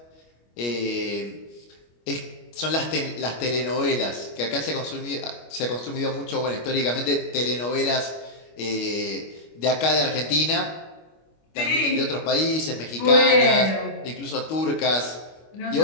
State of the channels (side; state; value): right; late; 25 ms